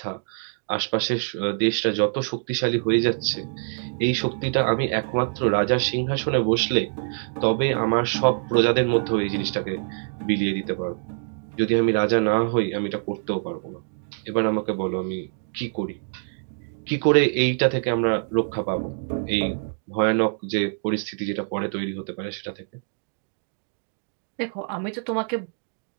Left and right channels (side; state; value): left; silent; digital silence